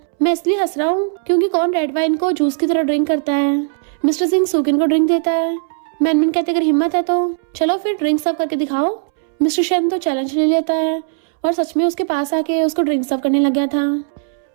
मैं इसलिए हंस रहा हूँ क्योंकि कौन रेड वाइन को जूस की तरह ड्रिंक करता है। मिस्टर सिंह सुकिन को ड्रिंक देता है। मैनमैन कहते अगर हिम्मत है तो चलो फिर ड्रिंक सर्व करके दिखाओ। मिस्टर शन तो चैलेंज ले लेता है और सच में उसके पास आके उसको ड्रिंक सर्व करने लग गया था।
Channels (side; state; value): left; silent; 67 dB below the other